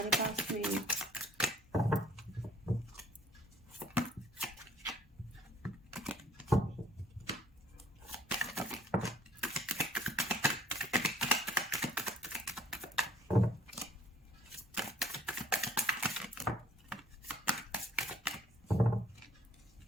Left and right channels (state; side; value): normal; both; correlation 0.59